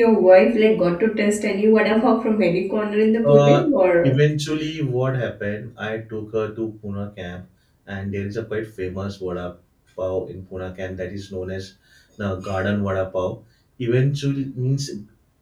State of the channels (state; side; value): identical; both; correlation 1.00